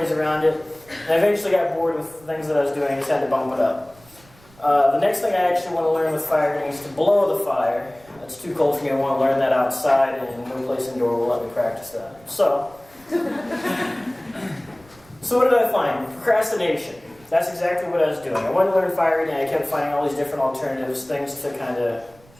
around it, and I eventually got bored with the things that I was doing. I just had to bump it up. The next thing I actually want to learn with fire is to blow the fire. It's too cold for me. I want to learn that outside, and no place indoor will let me practice that. So what did I find? Procrastination. That's exactly what I was doing. I wanted to learn fire eating. I kept finding all these different alternatives, things to kind of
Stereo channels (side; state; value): right; noise; rumble, 27 dB below the sound